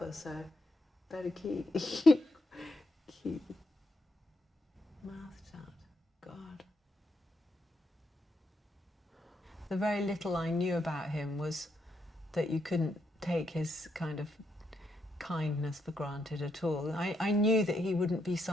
so better keep mouth shut. God. The very little I knew about him was that you couldn't take his kind of kindness for granted at all. I knew that he wouldn't be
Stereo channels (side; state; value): both; normal; correlation 0.79